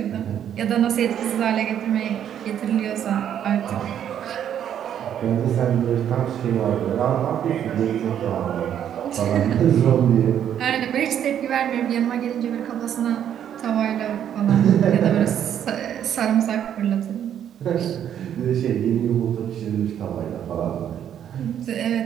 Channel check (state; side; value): quieter; left; 9.7 dB